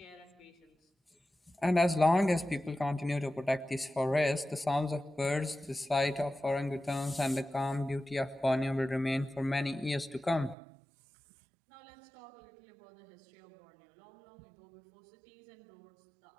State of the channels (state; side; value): drops out; left; at 10.6 s